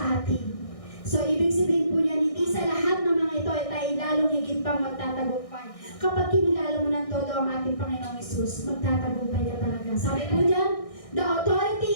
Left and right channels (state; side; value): late; right; 1.6 ms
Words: atin. So, ibig sabihin po niya, hindi sa lahat ng mga ito ay tayo lalong higit pang magtatagumpay. Kapag kinilala mo ng todo ang ating Panginoong Hesus, magtatagumpay ka talaga. Sabi po niya, the authority